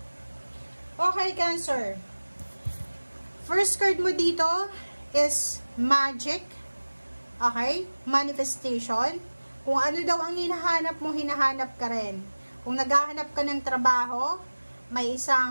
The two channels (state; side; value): inverted; both; correlation -1.00